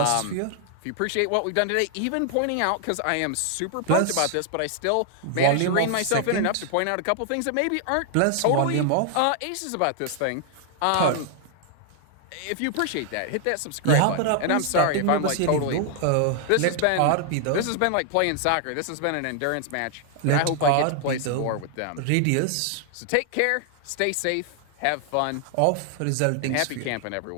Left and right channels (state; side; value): different; both; correlation 0.00